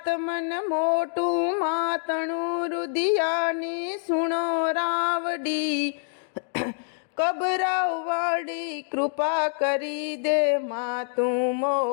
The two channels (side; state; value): right; silent; digital silence